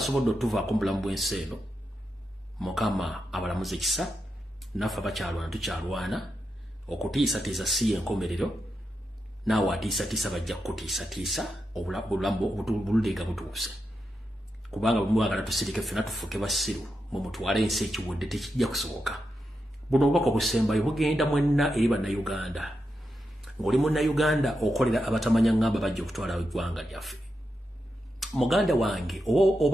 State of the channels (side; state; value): both; normal; correlation 0.87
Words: otuvaako mu bulamu bw'ensi eno Mukama abalamuze ekisa naffe abakyalwana tukyalwana okutiisatiisa si y'enkomerero naawe atiisatiisa bajja kutiisatiisa obulamu bululenga butuuse kubanga bwe mwagala tusirike ffenna tufuuke basiru mwe mutwale ensi ekiwedde tekijja kusoboka. Buno obubaka obusembayo bugenda mwenna eri bannayuganda ng'oli munnayuganda okolera abatamanya ngamba bajja okutwala eggwanga lyaffe. Muganda wange